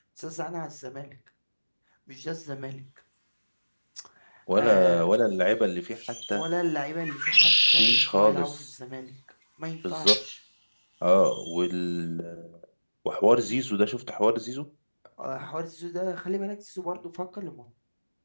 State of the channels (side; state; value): both; inverted; correlation -1.00